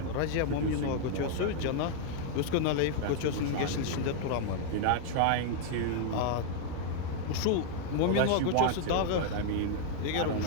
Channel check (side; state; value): both; different; correlation 0.00